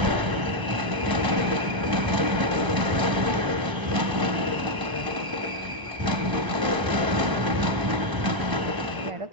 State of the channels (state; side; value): late; left; 1.0 ms